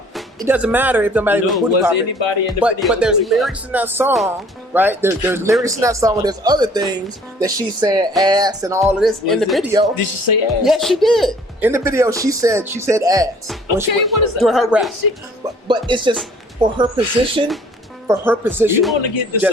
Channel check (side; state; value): both; normal; correlation 0.55